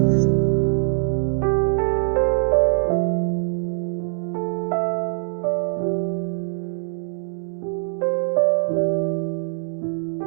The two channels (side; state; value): left; silent; digital silence